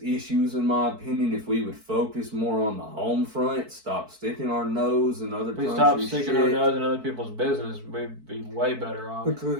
issues, in my opinion, if we would focus more on the home front, stop sticking our nose in other countries' stop sticking our shit. nose in other people's business, we'd be way better off.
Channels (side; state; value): left; late; 4.6 ms